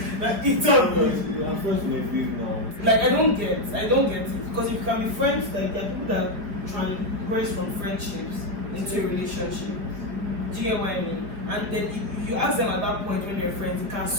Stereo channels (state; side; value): late; left; 4.7 ms